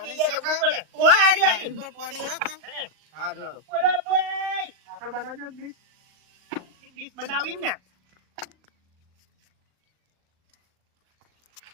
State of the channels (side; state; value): left; late; 38 ms